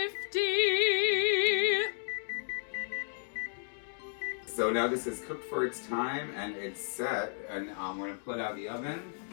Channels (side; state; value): right; silent; digital silence